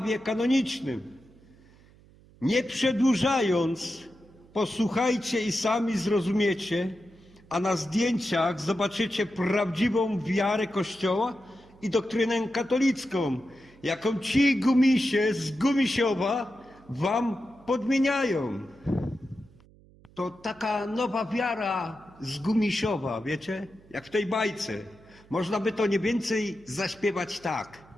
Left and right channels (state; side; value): noise; right; hum, 26 dB below the sound